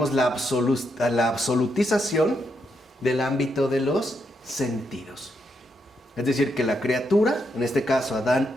absolutización del ámbito de los sentidos. Es decir, que la criatura, en este caso Adán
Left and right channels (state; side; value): normal; both; correlation 0.80